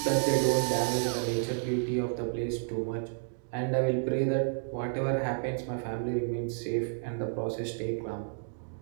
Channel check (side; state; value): left; silent; digital silence